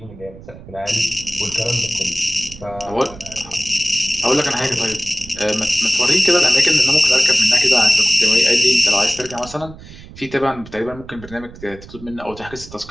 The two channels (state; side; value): noise; right; rumble, 17 dB below the sound